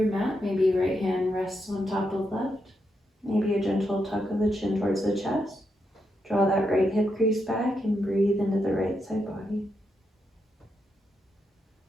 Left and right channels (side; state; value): both; normal; correlation 0.82